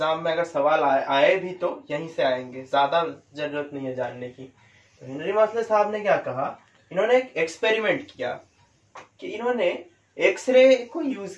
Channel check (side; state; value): both; identical; correlation 1.00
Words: में अगर सवाल आए भी तो यहीं से आएंगे, ज्यादा जरूरत नहीं है जानने की। तो हेनरी मॉसले साहब ने क्या कहा, इन्होंने एक एक्सपेरिमेंट किया कि इन्होंने एक्सरे को यूज